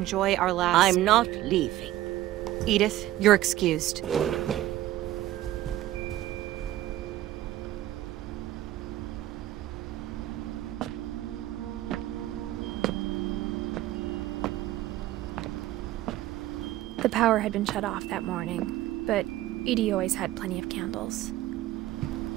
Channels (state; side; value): quieter; left; 14.7 dB